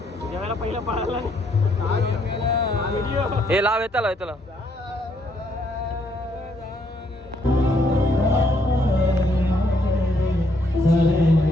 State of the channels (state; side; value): normal; both; correlation 0.71